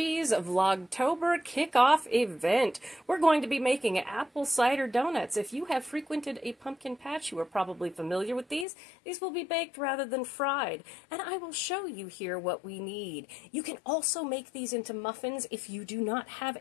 Vlogtober kickoff event. We're going to be making apple cider donuts. If you have frequented a pumpkin patch, you are probably familiar with these. These will be baked rather than fried, and I will show you here what we need. You can also make these into muffins if you do not have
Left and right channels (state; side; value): drops out; right; at 8.7 s